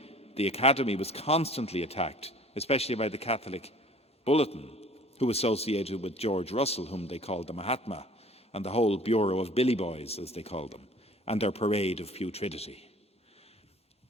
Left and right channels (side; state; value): both; normal; correlation 0.50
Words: the Academy was constantly attacked, especially by the Catholic Bulletin, who associated with George Russell, whom they called the Mahatma, and the whole Bureau of Billy Boys, as they called them, and their parade of putridity.